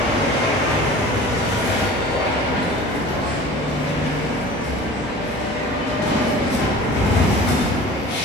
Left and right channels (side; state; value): both; normal; correlation 0.41